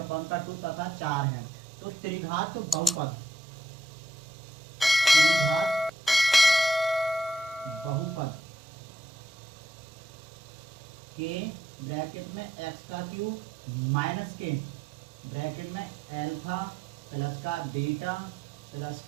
तथा 4 है। तो त्रिघात बहुपद के ब्रैकेट में एक्स का क्यूब माइनस के ब्रैकेट में अल्फा प्लस का बीटा प्लस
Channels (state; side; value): normal; both; correlation 0.74